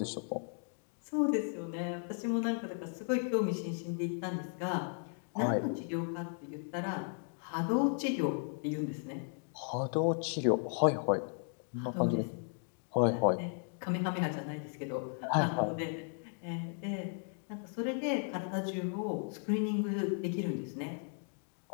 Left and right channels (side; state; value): right; silent; 54 dB below the other